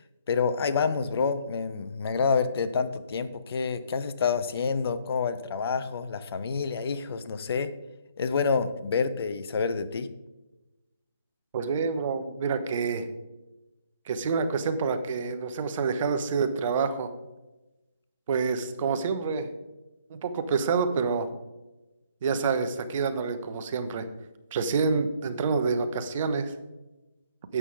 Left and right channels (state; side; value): inverted; both; correlation -0.60